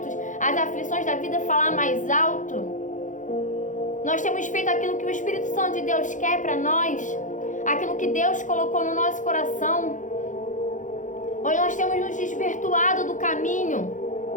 as aflições da vida falar mais alto? Nós temos feito aquilo que o Espírito Santo de Deus quer para nós, aquilo que Deus colocou no nosso coração, ou nós temos nos desvirtuado do caminho,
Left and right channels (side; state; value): right; late; 0.37 ms